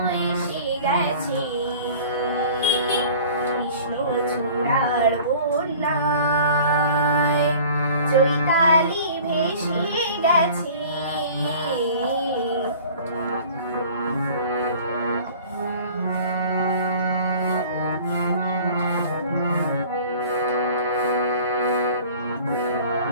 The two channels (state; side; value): inverted; both; correlation -0.46